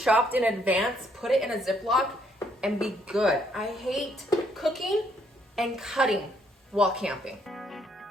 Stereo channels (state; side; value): normal; both; correlation 0.70